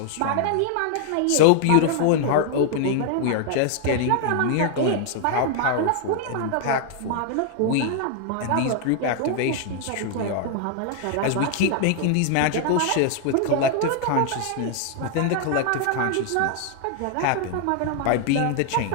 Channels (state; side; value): different; both; correlation 0.00